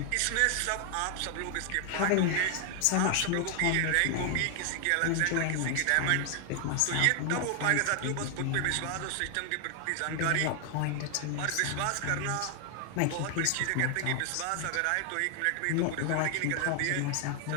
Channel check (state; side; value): different; both; correlation 0.00